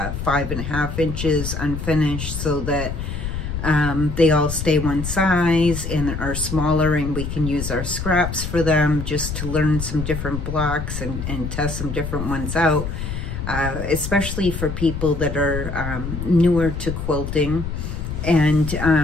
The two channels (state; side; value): noise; left; rumble, 5 dB below the sound